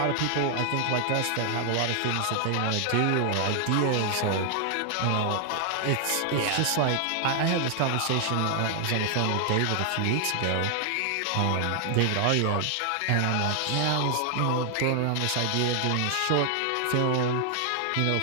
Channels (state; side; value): different; both; correlation 0.00